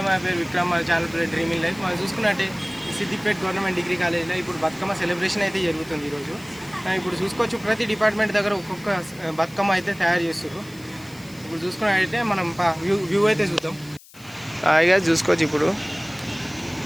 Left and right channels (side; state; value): left; noise; hiss, 23 dB below the sound